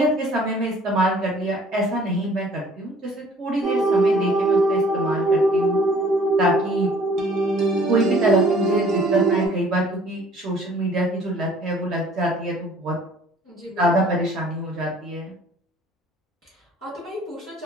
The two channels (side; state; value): both; normal; correlation 0.54